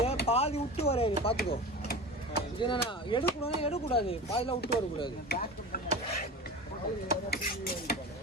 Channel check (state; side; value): normal; both; correlation 0.31